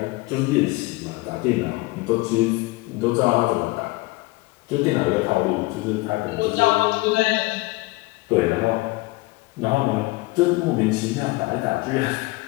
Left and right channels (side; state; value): right; quieter; 22.2 dB